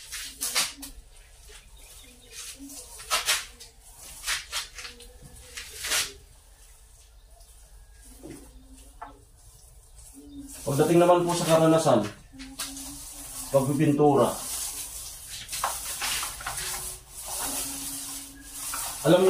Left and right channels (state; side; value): identical; both; correlation 1.00